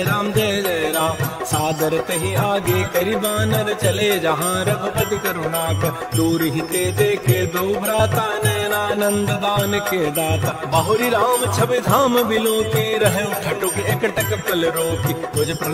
जय राम। सादर तहि आगे करि बानर चले जहाँ रघुपति करुणाकर। दूर ही ते देखे दो भ्राता नैनानंद दान के दाता। बहुरी राम छवि धाम बिलो के रहे ठटुक एकटक पल रोकी। तुझ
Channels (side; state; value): both; identical; correlation 1.00